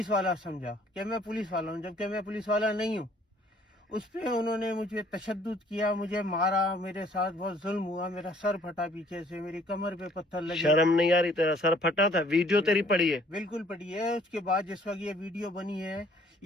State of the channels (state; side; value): normal; both; correlation 0.59